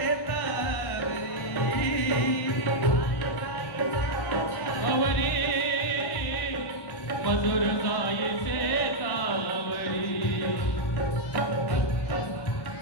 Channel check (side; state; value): right; late; 1.1 ms